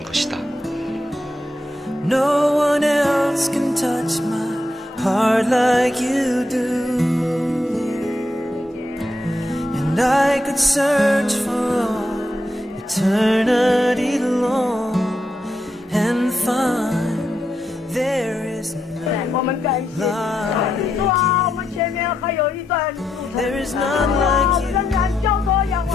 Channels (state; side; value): normal; both; correlation 0.81